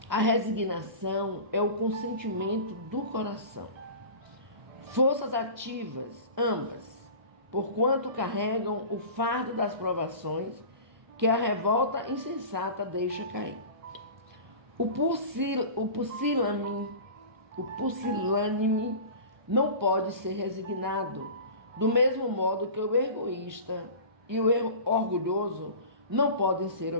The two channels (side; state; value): left; late; 1.2 ms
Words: A resignação é o consentimento do coração. Forças ativas, ambas, porquanto carregam o fardo das provações que a revolta insensata deixa cair. O pusilânime não pode ser resignado, do mesmo modo que o egoísta e o orgulhoso não podem ser